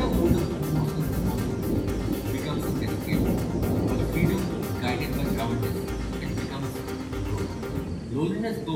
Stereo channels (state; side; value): identical; both; correlation 1.00